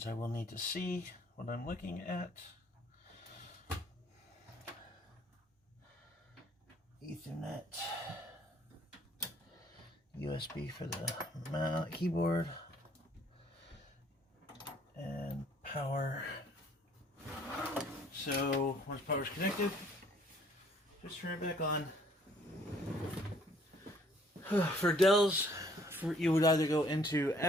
I will need to see what I'm looking at. Ethernet. USB for the keyboard. And power. So, once power's connected, just turn it back on. For Dells, you would either go into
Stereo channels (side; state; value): both; normal; correlation 0.61